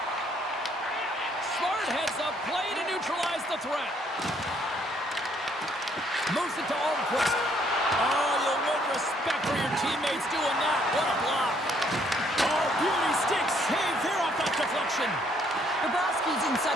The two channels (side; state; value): both; normal; correlation 0.67